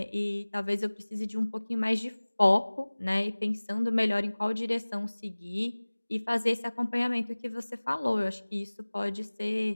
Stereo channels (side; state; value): both; inverted; correlation -1.00